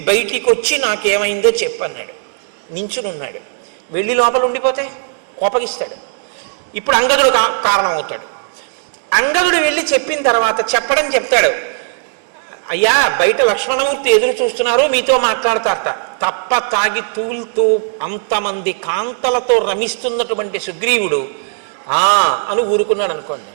బయటికి వచ్చి నాకేమైందో చెప్పన్నాడు. నించునున్నాడు. వెళ్ళి లోపల ఉండిపోతే కోపగిస్తాడు. ఇప్పుడు అంగదుడు కారణం అవుతాడు. అంగదుడు వెళ్ళి చెప్పిన తర్వాత చెప్తాడు, అయ్యా బయట లక్ష్మణమూర్తి ఎదురు చూస్తున్నారు, మీతో మాట్లాడతారట. తప్ప తాగి తూలుతూ అంతమంది కాంతలతో రమిస్తున్నటువంటి సుగ్రీవుడు అని ఊరుకున్నాడు అనుకోండి.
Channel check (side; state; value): left; silent; digital silence